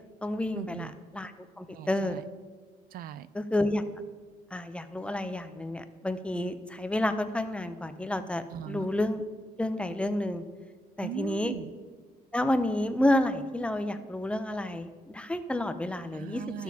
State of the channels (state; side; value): normal; both; correlation 0.87